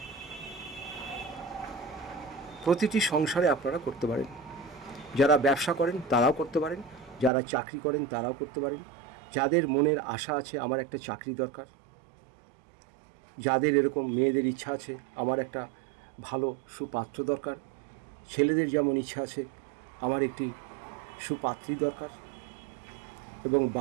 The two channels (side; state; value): left; drops out; at 7.3 s